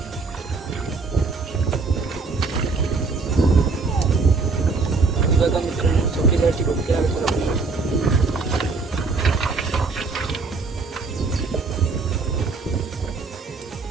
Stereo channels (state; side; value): quieter; left; 4.2 dB